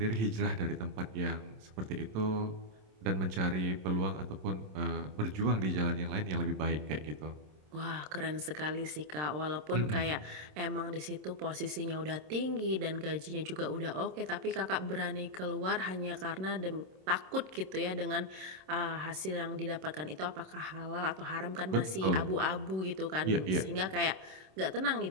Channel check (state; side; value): late; left; 27 ms